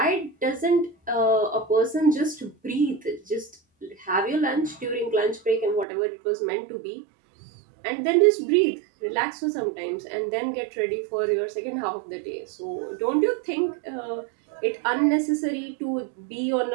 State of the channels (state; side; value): drops out; left; at 5.9 s